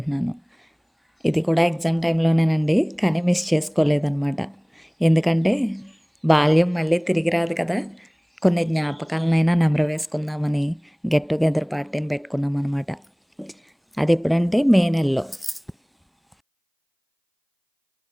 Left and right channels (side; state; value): both; identical; correlation 1.00